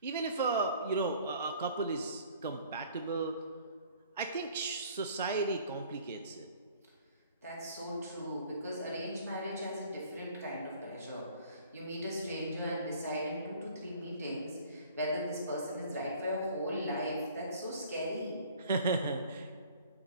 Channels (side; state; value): both; inverted; correlation -0.53